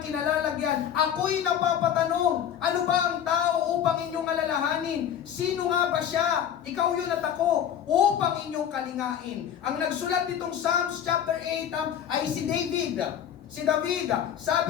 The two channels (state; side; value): quieter; right; 9.4 dB